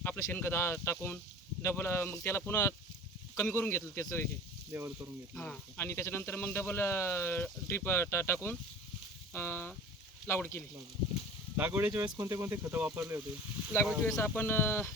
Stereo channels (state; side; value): normal; both; correlation 0.40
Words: आपलं शेणखत टाकून डबल मग त्याला पुन्हा कमी करून घेतलं त्याचं हे लेवल करून घेतलं. हां, आणि त्याच्यानंतर मग डबल ड्रीप टाकून लागवड केली. लागवडीच्या वेळेस कोणते कोणते खतं वापरले होते. लागवडीच्या वेळेस आपण